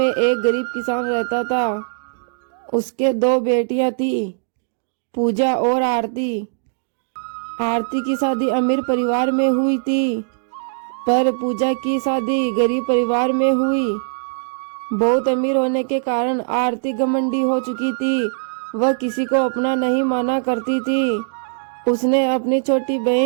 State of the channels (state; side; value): silent; left; digital silence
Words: एक गरीब किसान रहता था। उसके दो बेटियां थी, पूजा और आरती। आरती की शादी अमीर परिवार में हुई थी, पर पूजा की शादी गरीब परिवार में हुई। बहुत अमीर होने के कारण आरती घमंडी हो चुकी थी। वह किसी को अपना नहीं माना करती थी। उसने अपनी छोटी